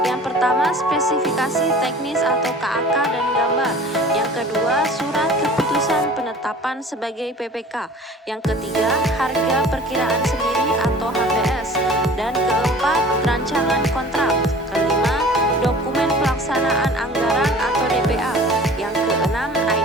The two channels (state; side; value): normal; both; correlation 0.44